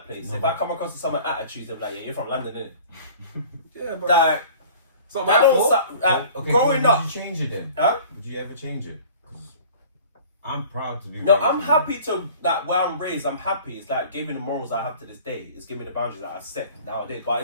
if I come across with someone attitudes, they're like, yeah, you're from London, innit? Yeah, but like, it's not my fault. Growing up. Would you change it then? Huh? Would you ever change it? I'm proud to be. No, I'm happy to, like, where I'm raised, I'm happy. It's like giving me the morals I have to this day. It's giving me the boundaries that I set nowadays. But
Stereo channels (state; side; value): inverted; both; correlation -0.46